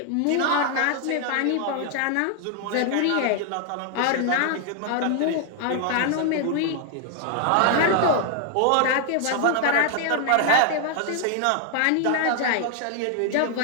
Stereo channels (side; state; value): both; different; correlation 0.00